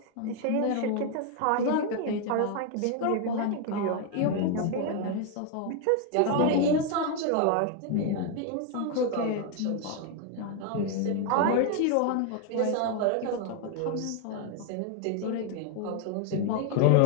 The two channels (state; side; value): different; both; correlation 0.00